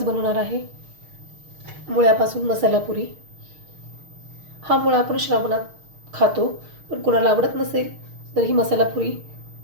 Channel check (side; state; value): left; late; 6.5 ms